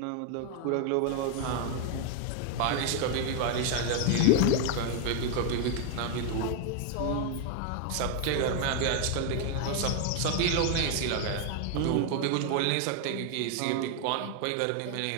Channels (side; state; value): both; different; correlation 0.00